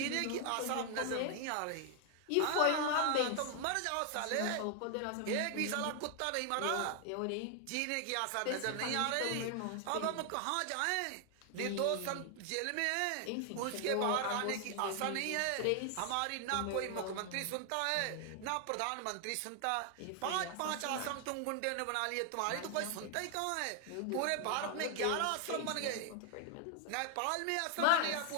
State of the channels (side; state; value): both; different; correlation 0.00